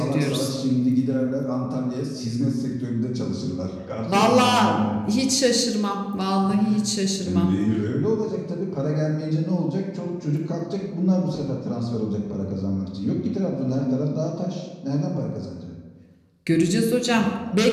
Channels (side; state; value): both; identical; correlation 1.00